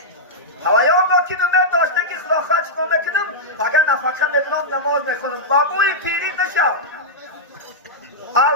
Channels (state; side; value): normal; both; correlation -0.09